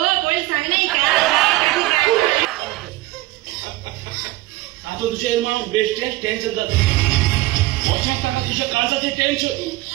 आता तुझे मग बेस्ट टेन्शन जात लक्षात टाका तुझ्या काळजाचे टेन्शन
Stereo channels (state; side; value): quieter; left; 18.3 dB